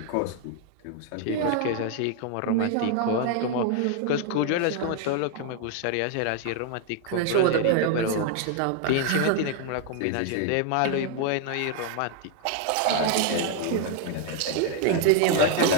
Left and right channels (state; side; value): different; both; correlation 0.00